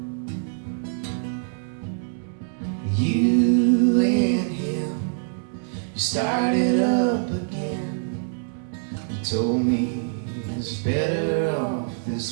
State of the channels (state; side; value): silent; left; 62 dB below the other